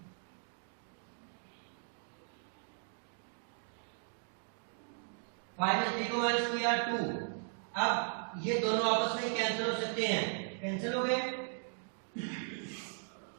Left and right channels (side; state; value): left; silent; 53 dB below the other